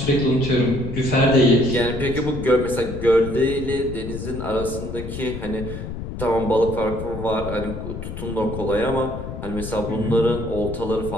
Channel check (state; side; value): noise; left; rumble, 8 dB below the sound